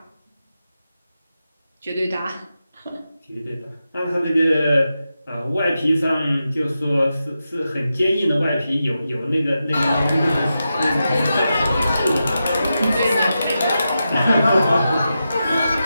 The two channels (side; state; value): both; inverted; correlation -0.89